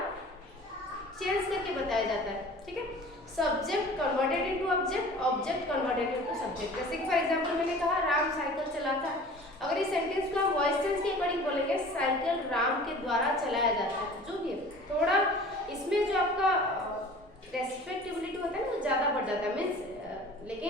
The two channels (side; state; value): both; normal; correlation 0.44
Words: चेंज करके बताया जाता है। ठीक है, subject converted into object, object converted into subject. जैसे कि फॉर एग्जांपल मैंने कहा राम साइकिल चलाता है, अगर इस सेंटेंस को हम वॉइस चेंज के अकॉर्डिंग बोलेंगे साइकिल राम के द्वारा चलाया जाता है, जो भी है, थोड़ा इसमें जो आपका रेस्पेक्टेबिलिटी होता है वो ज़्यादा बढ़ जाता है मीन्स,